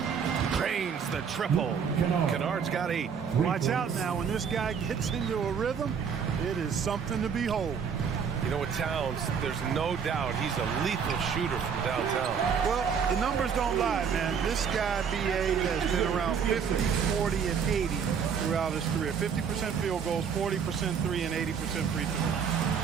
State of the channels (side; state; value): left; quieter; 6.9 dB